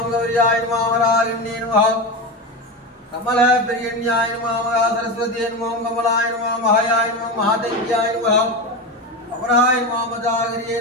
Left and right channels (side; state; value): both; normal; correlation 0.19